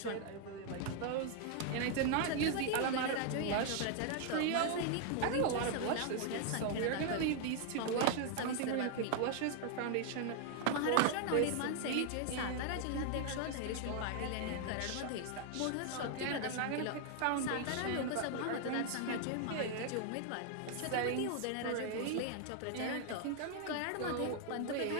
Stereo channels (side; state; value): both; different; correlation 0.00